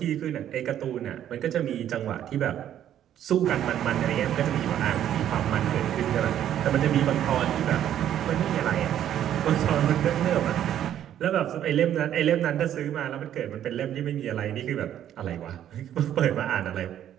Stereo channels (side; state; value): left; quieter; 10.8 dB